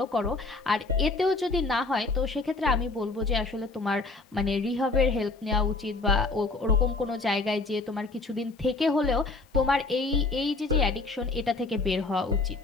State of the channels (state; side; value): quieter; right; 3.6 dB